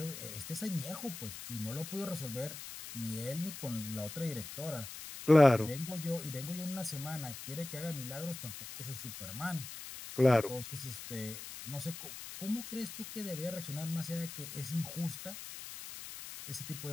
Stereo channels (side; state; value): left; noise; hiss, 10 dB below the sound